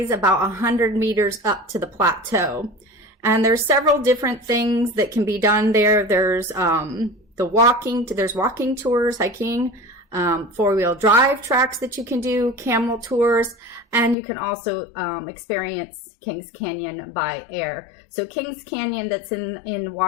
about 100 meters up to the plateau. And there's several different things that can be done there. There's there's walking tours, hiking, four-wheel drive tracks that you can do, camel tours, and you can also experience Kings Canyon by air. So Kings Canyon, that's in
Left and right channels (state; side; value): drops out; right; at 14.2 s